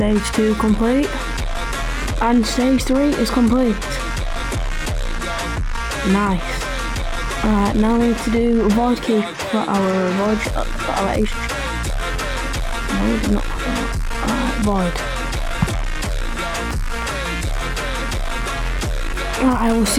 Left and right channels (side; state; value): both; identical; correlation 1.00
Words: 2 complete. And stage 3 is complete. Nice. Alright, now we need to do void key for our Asian. No, we did not. Void. Alright, I will